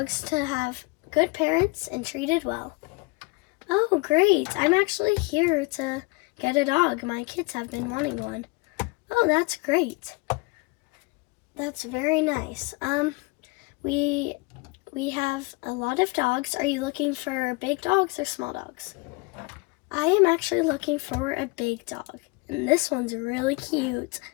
to have good parents and treated well. Oh, great. I'm actually here to get a dog. My kids have been wanting one. Oh, that's great. That's very nice. We have a lot of dogs. Are you looking for big dogs or small dogs? I am actually looking for a big dog. And this one's really cute.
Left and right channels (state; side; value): quieter; right; 26.7 dB